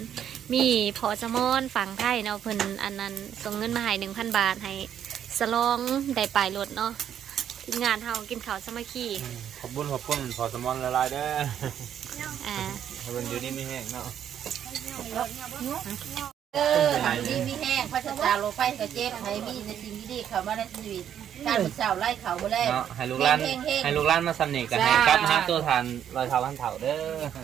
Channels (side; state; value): left; quieter; 9.6 dB